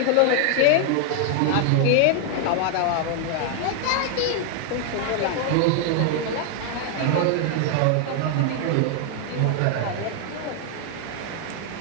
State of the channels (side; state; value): both; different; correlation 0.00